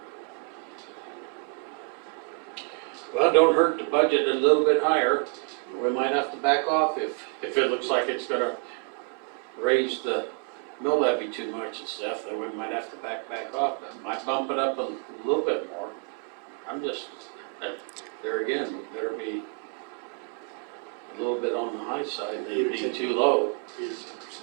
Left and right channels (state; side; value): quieter; left; 38.2 dB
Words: Well, don't hurt to budget a little bit higher. We might have to back off if it looks like it's gonna raise the mill levy too much and stuff, then we might have to back off. That might bump it up a little bit more. I'm just, there again, we better be a little bit on the high side, maybe be too low. 8 or 10%, I